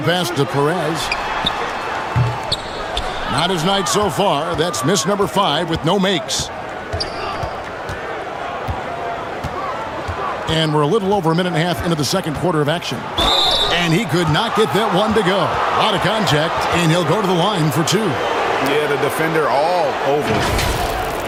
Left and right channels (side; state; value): both; identical; correlation 1.00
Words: pass to Perez. Not his night so far. That's miss number 5 with no makes. And we're a little over a minute and a half into the second quarter of action. And he could not get that one to go. A lot of contact, and he'll go to the line for 2. Yeah, the defender all over.